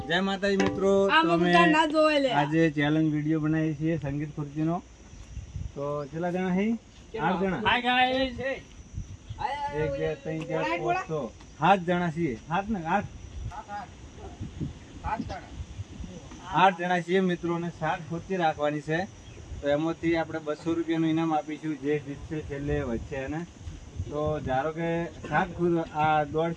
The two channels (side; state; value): both; identical; correlation 1.00